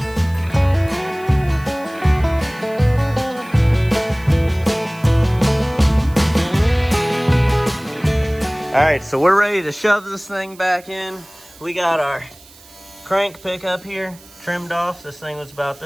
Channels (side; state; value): right; noise; hiss, 24 dB below the sound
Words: All right, so we're ready to shove this thing back in. We got our crank pickup here trimmed off. This thing was about